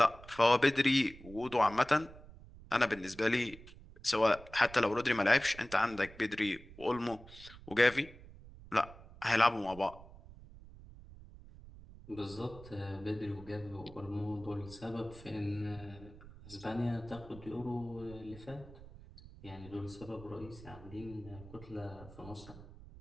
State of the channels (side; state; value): right; noise; rumble, 18 dB below the sound